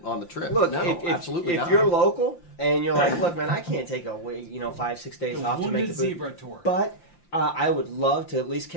trip? Look, absolutely if not. you're local and you're like, look, man, I can't take 5-6 days off to make the Zebra tour. But I would love to at least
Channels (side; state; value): right; late; 5.8 ms